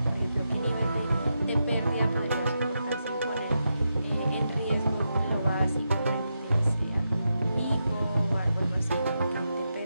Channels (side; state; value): both; inverted; correlation -0.86